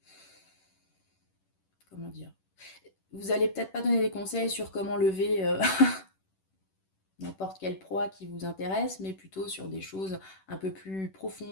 comment dire, vous allez peut-être pas donner des conseils sur comment lever n'importe quelle proie qui vous intéresse, mais plutôt sur des choses un peu plus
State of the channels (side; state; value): right; late; 10 ms